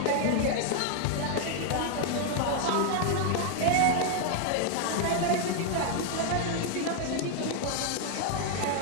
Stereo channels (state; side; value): different; both; correlation 0.00